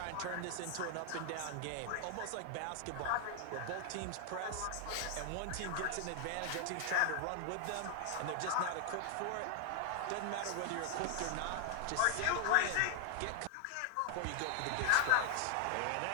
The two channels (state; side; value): different; both; correlation 0.00